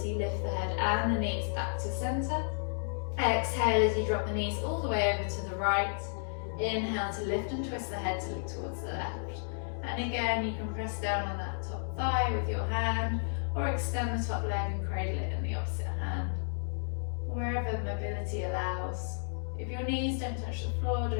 you lift the head and the knees back to center. Exhale as you drop the knees all the way over to the right. Inhale to lift and twist the head to look towards the left. And again, you can press down on that top thigh with your hand, or extend the top leg and cradle it in the opposite hand. Wherever mobility allows. If your knees don't touch the floor,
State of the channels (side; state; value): right; silent; digital silence